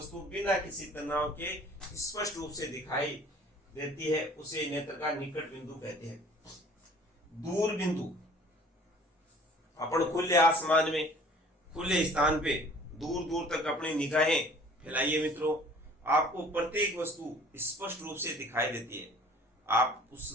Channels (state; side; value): normal; both; correlation 0.51